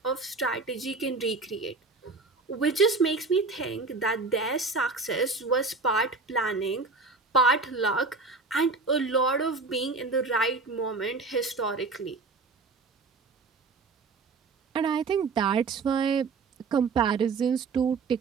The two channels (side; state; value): left; quieter; 4.0 dB